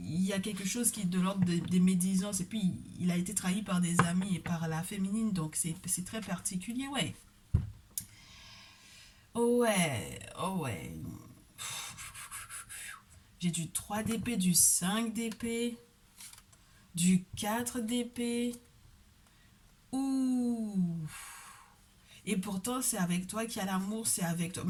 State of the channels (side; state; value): both; identical; correlation 1.00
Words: y a quelque chose qui est de l'ordre des médisances, et puis il a été trahi par des amis et par la féminine, donc c'est très particulier, ouais. Oh ouais, oh ouais. J'ai du 3 d'épée, du 5 d'épée, du 4 d'épée. Ouh. Et pourtant, c'est avec toi qu'il y a l'amour, c'est avec toi.